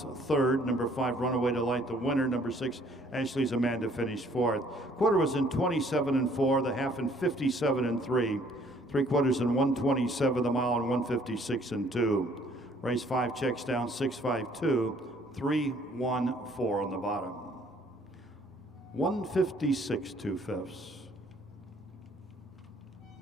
3rd. Number 5, Runaway Delight, the winner. Number 6, Ashley's Amanda finished 4th. Quarter was in 27 and 4, the half in 57 and 3. 3/4 in 127, the mile in 156 and 2. Race 5 checks down 652, 314 on the bottom. 156 2/5.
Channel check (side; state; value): both; normal; correlation 0.60